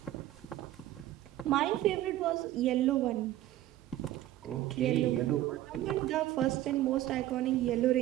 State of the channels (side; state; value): left; quieter; 14.1 dB